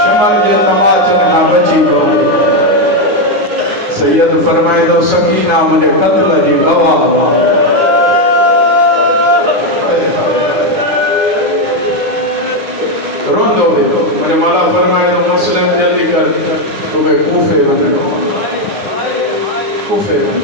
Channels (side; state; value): left; late; 9.5 ms